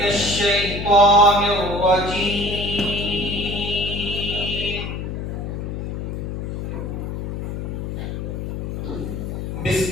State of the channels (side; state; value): left; noise; hum, 5 dB below the sound